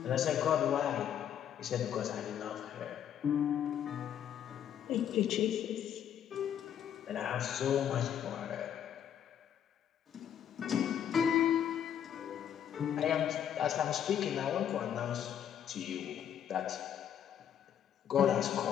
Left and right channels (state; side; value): quieter; right; 9.5 dB